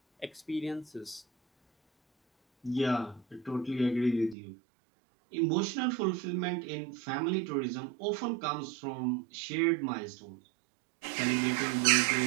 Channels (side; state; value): left; drops out; at 4.4 s